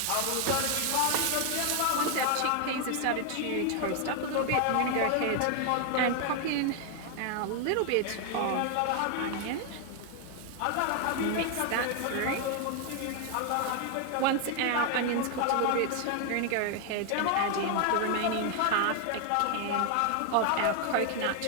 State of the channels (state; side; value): different; both; correlation 0.00